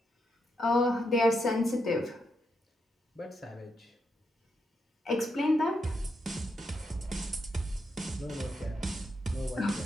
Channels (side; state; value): both; normal; correlation 0.82